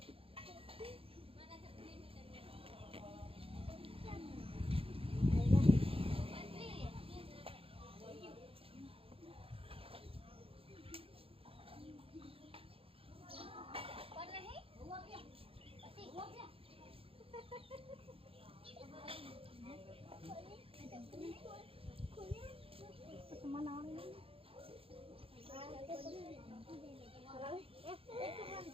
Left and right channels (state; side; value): late; left; 0.27 ms